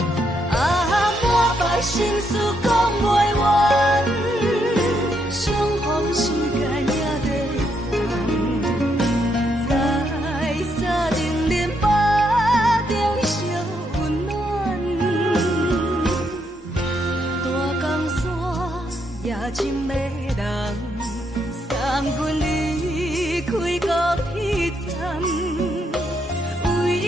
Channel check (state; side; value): normal; both; correlation 0.77